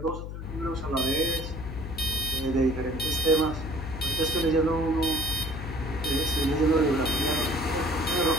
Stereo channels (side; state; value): left; noise; hum, 8 dB below the sound